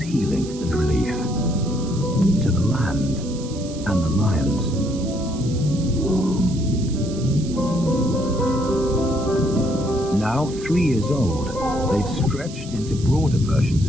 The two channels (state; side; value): noise; right; hiss, 16 dB below the sound